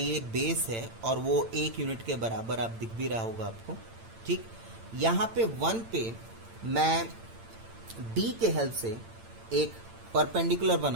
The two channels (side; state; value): left; late; 8.9 ms